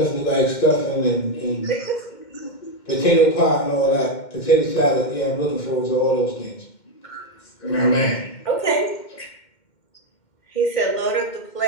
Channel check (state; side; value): late; right; 2.1 ms